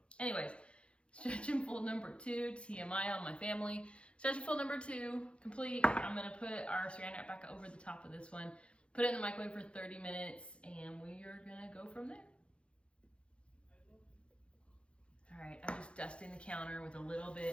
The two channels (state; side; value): late; right; 0.059 ms